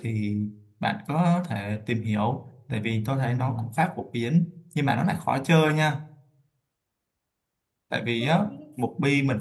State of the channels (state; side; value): identical; both; correlation 1.00